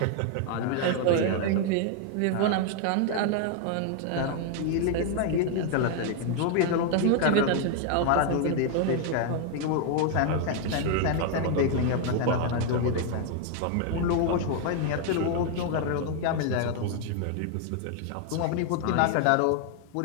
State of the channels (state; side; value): different; both; correlation 0.00